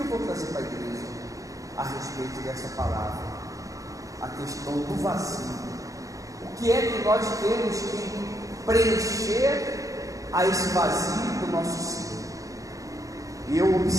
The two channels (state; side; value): late; left; 0.16 ms